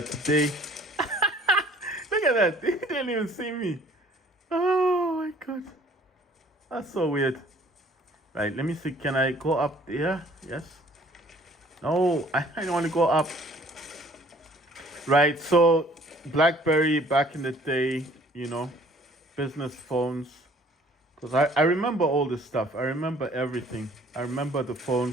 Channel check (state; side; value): normal; both; correlation 0.56